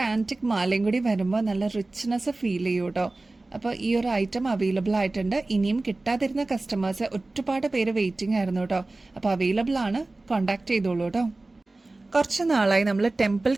ആന്റിക് മാലയും കൂടി വരുമ്പോൾ നല്ല റിച്ച്നെസ് ഫീൽ ചെയ്യും കേട്ടോ. അപ്പോൾ ഈ ഒരു ഐറ്റം അവൈലബിൾ ആയിട്ടുണ്ട്. ഇനിയും കിട്ടാതിരുന്ന കസ്റ്റമേഴ്സ് ഒരുപാട് പേര് വെയിറ്റിംഗ് ആയിരുന്നു കേട്ടോ. അപ്പോൾ അവൈലബിൾ ആണ്, കോണ്ടാക്ട് ചെയ്തോളൂ കേട്ടോ. കുറച്ച് നാളായി നമ്മൾ ടെമ്പിൾ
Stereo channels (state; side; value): quieter; left; 3.1 dB